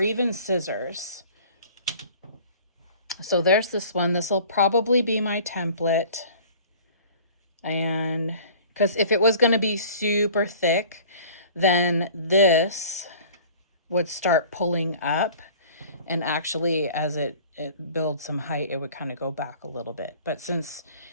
scissors. So there's this one. This will probably be my template. And because if it was going to be super thick, then this would start pulling up, and actually as it builds some height, it would kind of go back a little bit. But since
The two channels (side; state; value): both; inverted; correlation -0.47